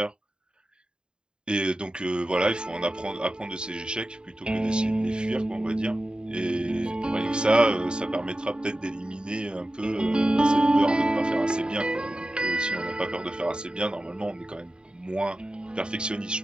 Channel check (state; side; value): late; left; 0.049 ms